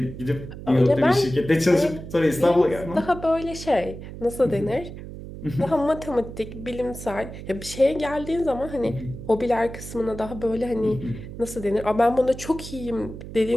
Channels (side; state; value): right; noise; hum, 12 dB below the sound